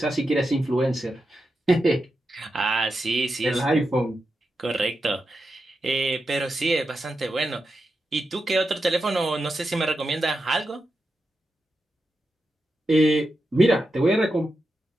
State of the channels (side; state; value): both; normal; correlation 0.88